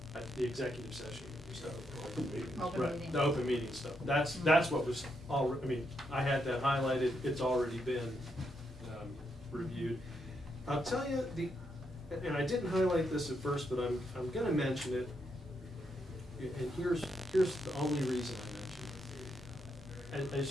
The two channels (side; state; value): both; normal; correlation 0.80